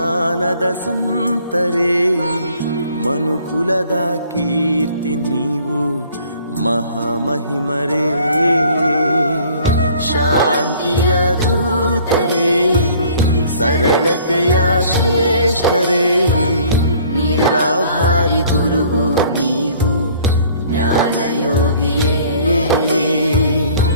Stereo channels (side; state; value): both; inverted; correlation -0.55